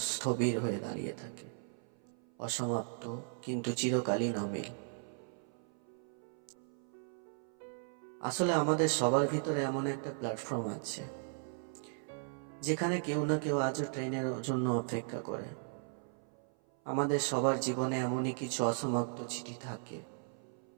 স্থবির হয়ে দাঁড়িয়ে থাকে, অসমাপ্ত কিন্তু চিরকালীন অমিল। আসলে আমাদের সবার ভিতরে এমন একটা প্ল্যাটফর্ম আছে, যেখানে কেউ না কেউ আজও ট্রেনের জন্য অপেক্ষা করে। আমাদের সবার জীবনে এমনই কিছু অসমাপ্ত চিঠি থাকে,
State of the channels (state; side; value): silent; left; 53 dB below the other